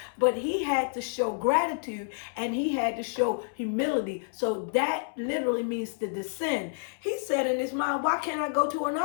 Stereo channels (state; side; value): silent; right; 59 dB below the other